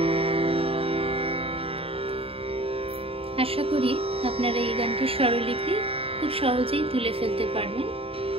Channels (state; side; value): late; left; 0.27 ms